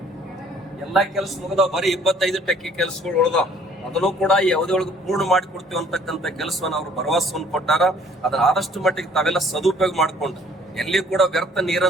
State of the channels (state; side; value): normal; both; correlation 0.57